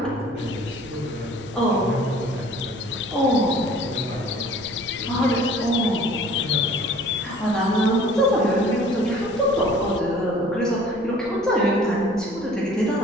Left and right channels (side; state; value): left; noise; rumble, 22 dB below the sound